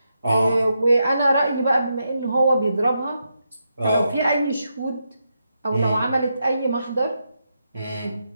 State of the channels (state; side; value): inverted; both; correlation -0.84